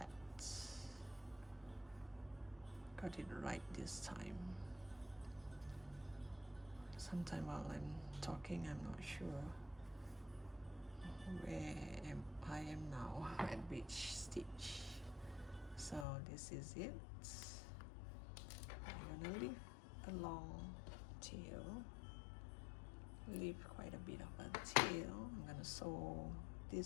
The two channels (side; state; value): right; drops out; at 16.1 s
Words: Got it right this time. Sometime while I'm talking, I'm not sure where I am now at which stitch. So this is it. I'm gonna leave a long tail, leave quite a bit of a tail. I'm gonna sew